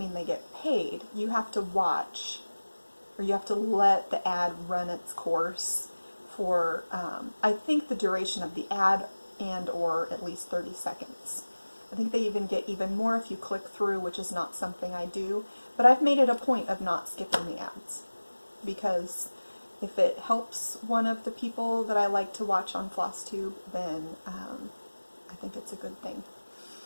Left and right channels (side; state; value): both; inverted; correlation -1.00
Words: they get paid. You have to watch, or you have to let the ad run its course for, I think, the duration of the ad and or at least 30 seconds. I think they even get even more if you click through, which is not something I do, but I've made it a point of not skipping the ads because if it helps one of the people that I like to watch on Flosstube, then I think it's a good thing.